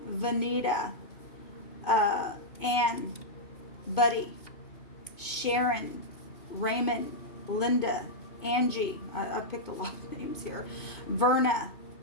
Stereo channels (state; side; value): late; right; 2.5 ms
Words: Vanita, Ann, Buddy, Sharon, Raymond, Linda, Angie, I picked a lot of names here, Verna,